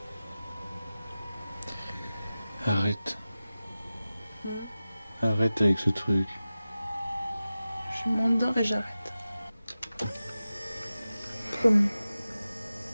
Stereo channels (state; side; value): inverted; both; correlation -0.95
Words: Arrête. Arrête avec ce truc. Je m'endors et j'arrête. Promis.